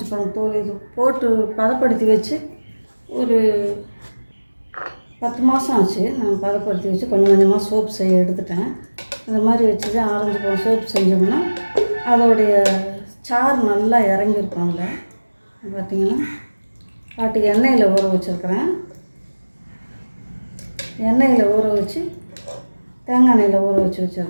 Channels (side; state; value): both; inverted; correlation -1.00